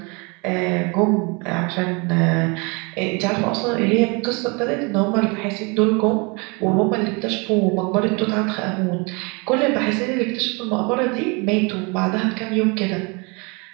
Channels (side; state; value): left; quieter; 30.1 dB